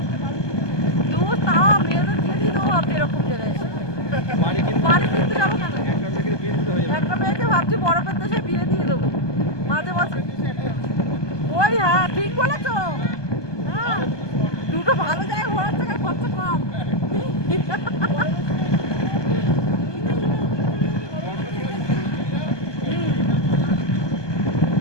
তাও মেয়েদের দিয়ে দিত এরকম জায়গায়। বাড়ি কিনতে যাবো কেন? একটা মেয়েকে ভাবছি বরফের দেশে বিয়ে দিয়ে দেবো মাঝে মাঝে। ওই হ্যাঁ ঠিক বলেছ, হ্যাঁ দুটো ভালো জায়গায় ঘোরার জায়গায় খরচা কম।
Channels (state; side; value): late; right; 1.2 ms